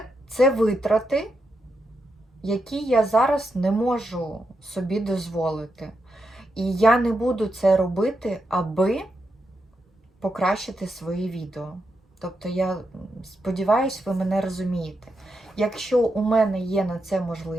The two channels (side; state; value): both; normal; correlation 0.84